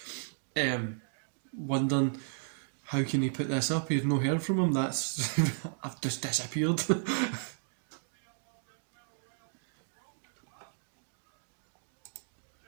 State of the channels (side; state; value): left; silent; digital silence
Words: wondering how can he put this up. You've no heard from him. That's I've just disappeared.